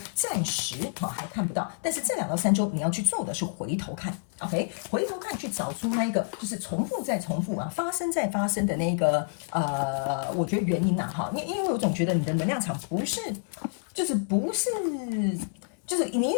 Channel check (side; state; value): right; silent; 59 dB below the other